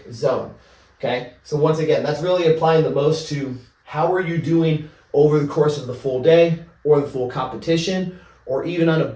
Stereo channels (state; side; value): identical; both; correlation 1.00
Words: zone, okay? So once again, that's really applying the most to how are you doing over the course of the full day or the full competition, or even on a